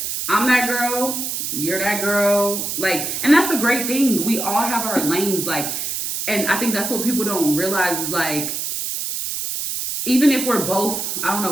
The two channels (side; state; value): right; noise; hiss, 3 dB below the sound